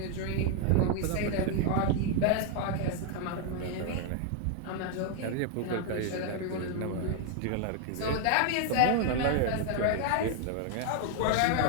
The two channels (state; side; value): different; both; correlation 0.00